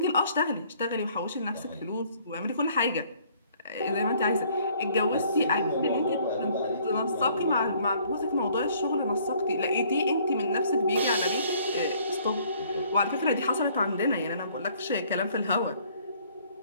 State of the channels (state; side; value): inverted; both; correlation -0.61